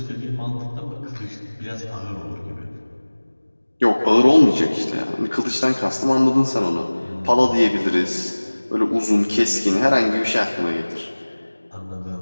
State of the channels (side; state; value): both; inverted; correlation -1.00